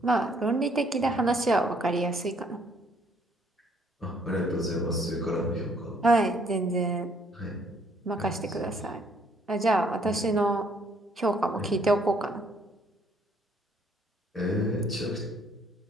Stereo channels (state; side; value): normal; both; correlation 0.65